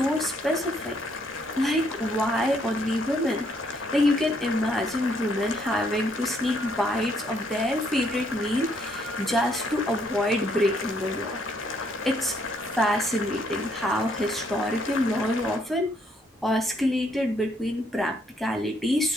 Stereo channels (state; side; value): normal; both; correlation 0.70